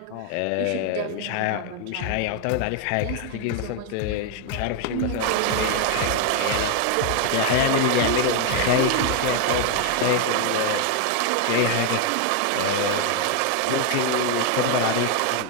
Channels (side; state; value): both; different; correlation 0.01